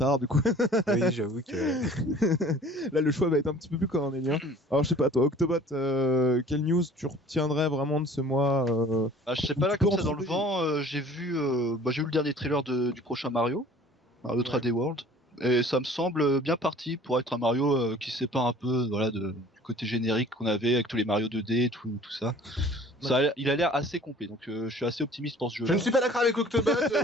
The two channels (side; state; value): both; normal; correlation 0.49